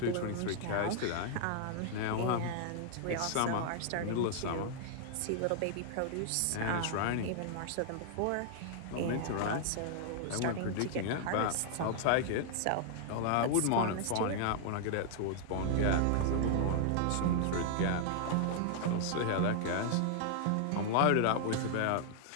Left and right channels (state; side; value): different; both; correlation 0.00